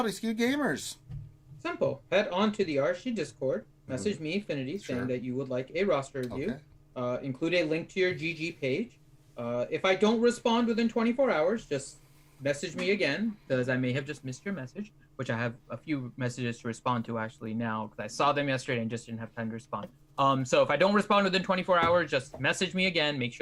Skewed Gamers? Simple. Head on to the RSG Discord, message me, Infinity, saying that you would like a roster review. Okay. Include a link to your GG page. If I don't respond within 24 hours, just message me again, because I may have just missed your message, which I have a few messages to respond to actually now, because I saw them yesterday and just didn't have time to respond. So if I don't respond within 24 hours, just message me again, make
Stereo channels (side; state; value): both; identical; correlation 1.00